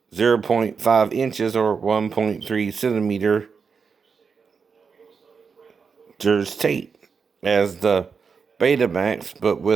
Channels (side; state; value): left; quieter; 5.6 dB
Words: 0.5 inches or 1.3 centimeters tape, as the Betamax, but